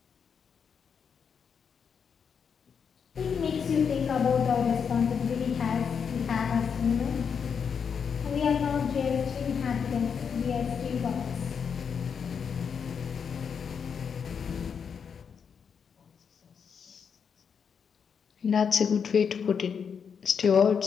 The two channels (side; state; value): right; quieter; 6.7 dB